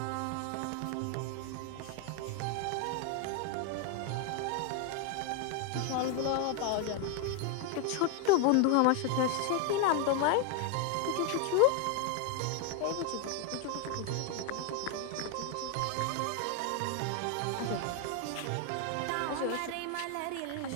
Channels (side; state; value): both; different; correlation 0.00